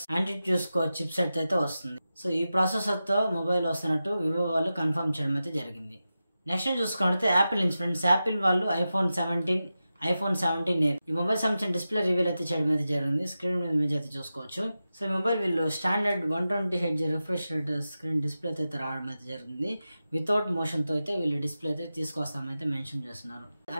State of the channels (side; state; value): both; inverted; correlation -0.92